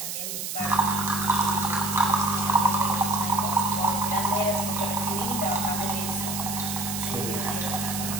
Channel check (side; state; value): right; noise; hiss, 4 dB below the sound